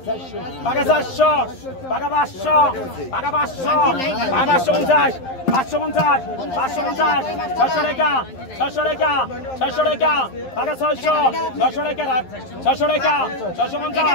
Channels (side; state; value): right; late; 11 ms